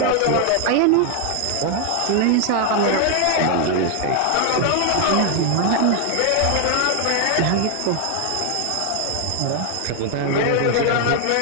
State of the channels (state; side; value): different; both; correlation 0.00